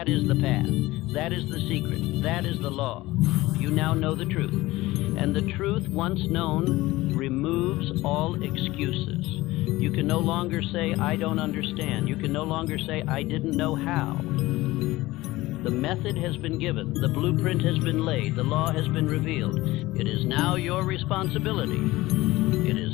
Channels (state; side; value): quieter; right; 18.7 dB